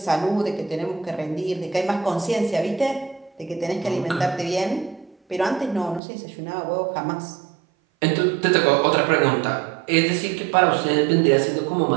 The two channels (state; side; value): drops out; left; at 6.0 s